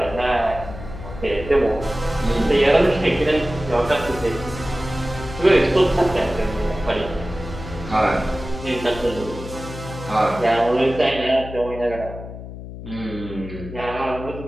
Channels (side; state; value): left; noise; hum, 11 dB below the sound